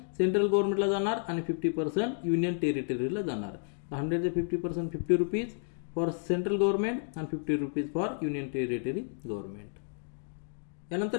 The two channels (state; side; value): silent; right; 57 dB below the other